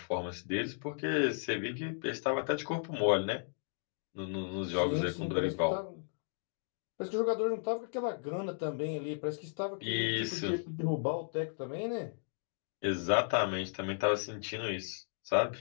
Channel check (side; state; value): right; silent; 54 dB below the other